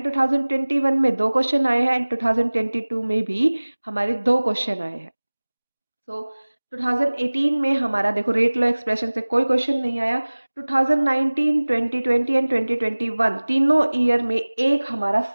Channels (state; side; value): inverted; both; correlation -1.00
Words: 2021 में 2 क्वेश्चन आए हैं एंड 2022 में भी हमारे 2 क्वेश्चन आए हैं। सो 2018 में हमारा देखो रेट लॉ एक्सप्रेशन से कोई क्वेश्चन नहीं आया। 2019, 2020 एंड 2021 तीनों ईयर में एक हमारा